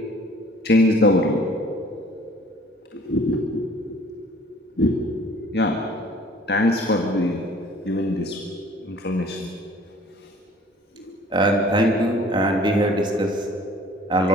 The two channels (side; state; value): both; normal; correlation 0.52